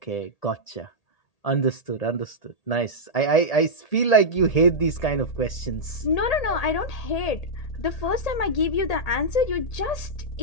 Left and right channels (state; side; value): late; right; 1.8 ms